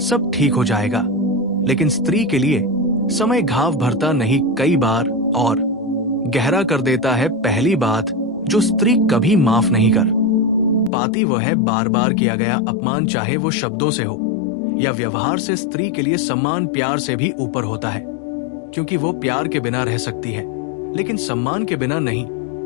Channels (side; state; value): right; drops out; at 10.9 s